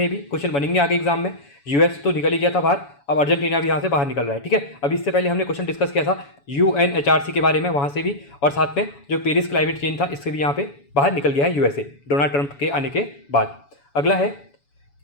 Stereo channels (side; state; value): right; late; 7.1 ms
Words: ये भी, क्वेश्चन बनेंगे आगे एग्जाम में। US तो निकल ही गया था बाहर, अब अर्जेंटीना भी यहाँ से बाहर निकल रहा है, ठीक है। अब इससे पहले हमने क्वेश्चन डिस्कस किया था UNHRC के बारे में, वहाँ से भी, और साथ में जो पेरिस क्लाइमेट चेंज था, इससे भी यहाँ पे बाहर निकल गया है USA डोनाल्ड ट्रंप के आने के बाद। अगला है,